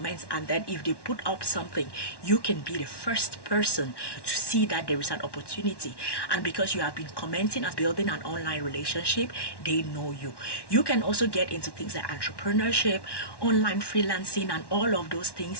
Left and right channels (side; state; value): right; late; 1.1 ms